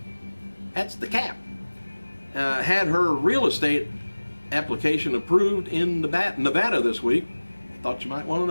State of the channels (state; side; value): inverted; both; correlation -1.00